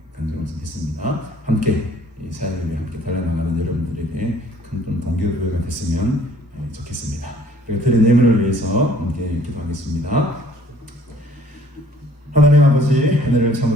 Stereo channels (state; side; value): normal; both; correlation 0.57